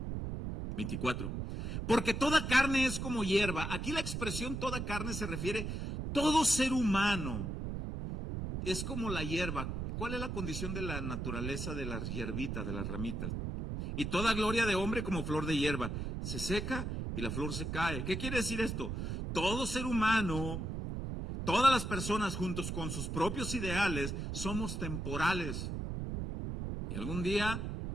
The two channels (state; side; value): noise; right; rumble, 4 dB below the sound